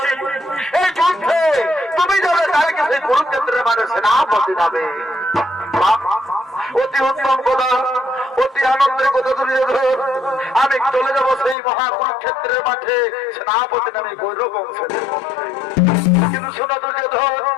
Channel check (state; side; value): drops out; right; at 11.6 s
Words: এই যুদ্ধে তুমি যাবে কালকে সেই কুরুক্ষেত্রের মানে সেনাপতি যাবে। অতি উত্তম কথা, অতি আনন্দের কথা দুর্যোধন। আমি চলে যাব সেই মহাকুরুক্ষেত্রের মাঠে সেনাপতি নামে গৌরব বংশের মধ্যে। কিন্তু শোনা দুর্যোধন,